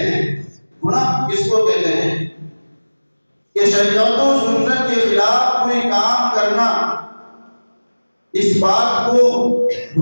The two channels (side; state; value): both; inverted; correlation -1.00